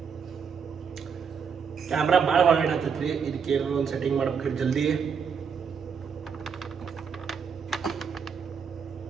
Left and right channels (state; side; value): quieter; left; 6.5 dB